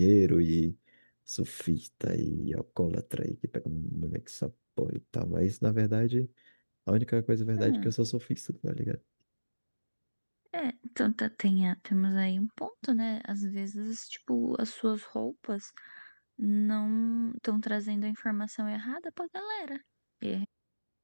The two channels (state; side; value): inverted; both; correlation -1.00